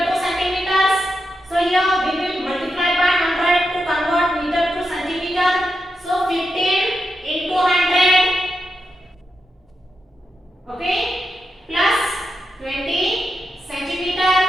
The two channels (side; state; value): both; normal; correlation 0.87